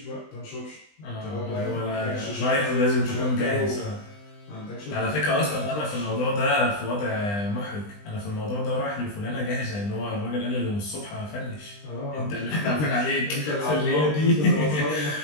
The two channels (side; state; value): right; late; 20 ms